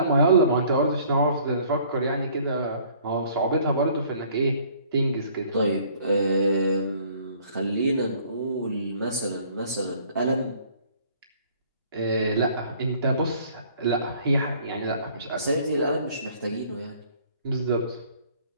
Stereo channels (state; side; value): inverted; both; correlation -0.57